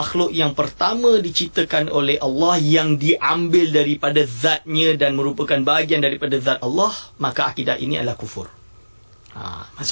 yang pertama diciptakan oleh Allah, yang diambil daripada zatnya dan merupakan bahagian daripada zat Allah, maka akidah ini adalah kufur.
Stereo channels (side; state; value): both; inverted; correlation -1.00